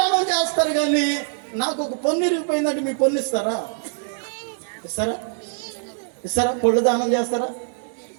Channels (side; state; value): left; silent; digital silence